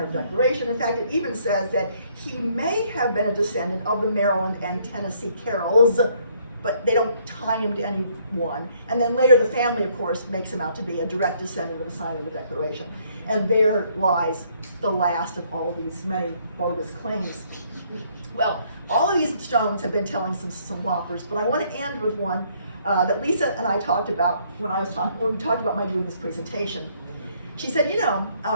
of Declaration. In fact, it even says that he may have been a descendant of the Maryland and Tennessee Carrolls, but they don't tie him to any one. And then later the family, of course, makes him out to be a direct descendant of the signer of the Declaration. And there lies the last of all of these many bogus claims. Well, all of these stones have been telling some whoppers, but I want to end with one that Lisa and I talked about when we talked about my doing this presentation. She said, you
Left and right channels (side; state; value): both; inverted; correlation -0.66